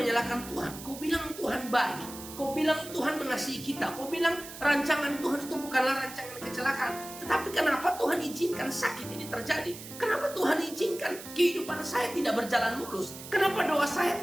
Tuhan. Kau bilang Tuhan baik, kau bilang Tuhan mengasihi kita, kau bilang rancangan Tuhan itu bukanlah rancangan kecelakaan. Tetapi kenapa Tuhan izinkan sakit ini terjadi? Kenapa Tuhan izinkan kehidupan saya tidak berjalan mulus? Kenapa doa saya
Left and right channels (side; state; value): right; noise; hiss, 13 dB below the sound